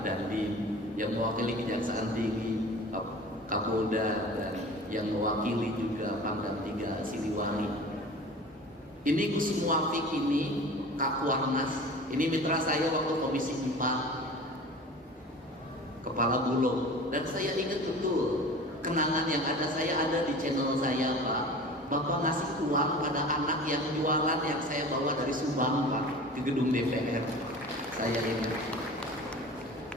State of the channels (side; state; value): both; normal; correlation 0.39